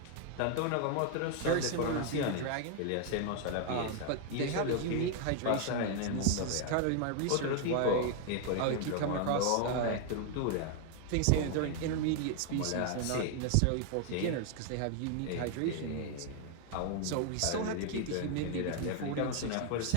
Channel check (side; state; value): both; different; correlation 0.00